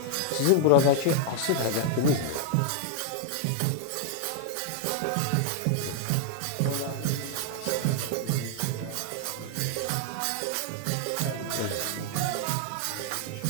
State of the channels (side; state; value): both; different; correlation 0.00